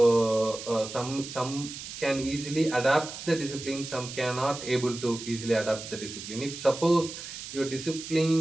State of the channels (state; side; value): noise; right; hiss, 10 dB below the sound